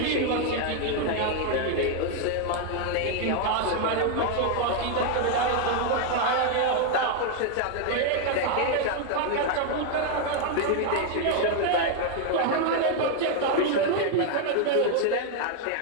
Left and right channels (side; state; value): both; different; correlation 0.01